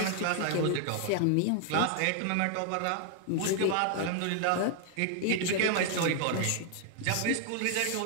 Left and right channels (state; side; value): different; both; correlation 0.00